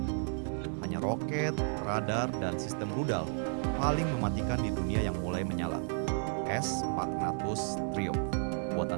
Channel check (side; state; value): left; silent; 56 dB below the other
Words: Hanya roket, radar, dan sistem rudal paling mematikan di dunia yang mulai menyala. S-400 Triumph,